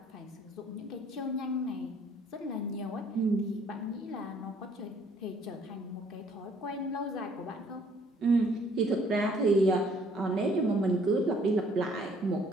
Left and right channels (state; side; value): normal; both; correlation 0.61